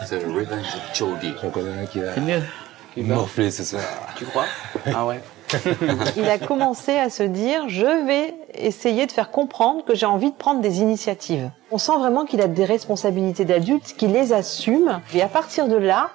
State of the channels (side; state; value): left; quieter; 16.2 dB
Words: C'est le revenge de Jordi. J'en connais un qui va C'est mieux. morfler ce soir. Tu crois? Ah ouais. Il a commencé à se dire, je vais essayer de faire comprendre que j'ai envie de prendre des initiatives. On sent vraiment qu'il a des responsabilités d'adulte, qu'il les assume. Et à partir de là,